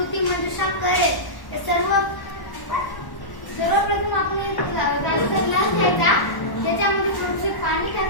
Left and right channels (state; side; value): late; right; 1.1 ms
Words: मंजुषा करेल. सर्वप्रथम आपण काचेचा ग्लास घ्यायचा, त्याच्यामध्ये थोडेसे पाणी